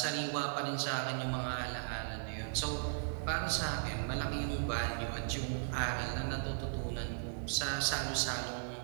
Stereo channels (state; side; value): silent; left; 53 dB below the other